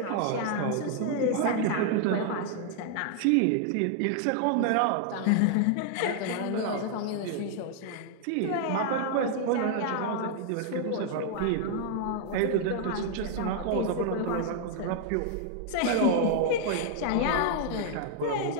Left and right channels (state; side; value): different; both; correlation 0.00